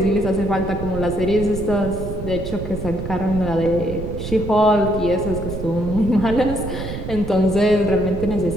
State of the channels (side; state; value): right; noise; rumble, 7 dB below the sound